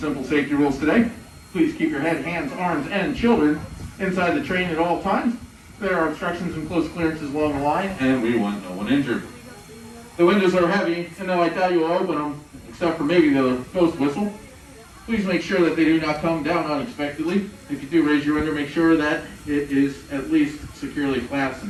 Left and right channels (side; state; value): both; identical; correlation 1.00